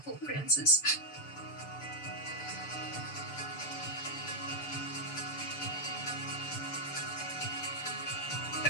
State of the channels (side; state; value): right; late; 6.9 ms